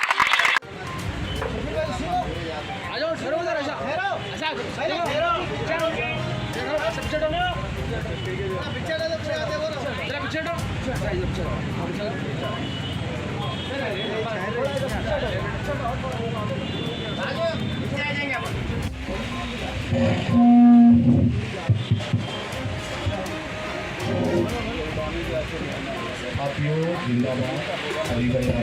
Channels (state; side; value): identical; both; correlation 1.00